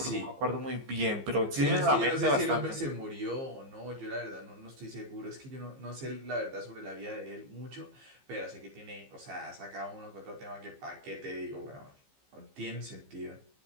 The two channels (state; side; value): late; left; 15 ms